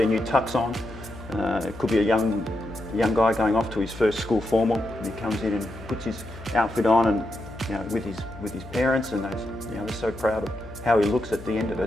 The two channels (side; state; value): left; noise; hum, 15 dB below the sound